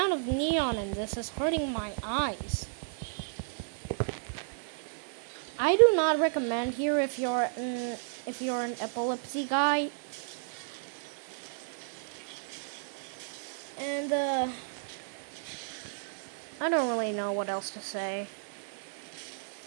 of neon in this is hurting my eyes. I do not recommend here if you're an epilepsy guy. And I don't really know what else to say.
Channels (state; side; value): silent; left; digital silence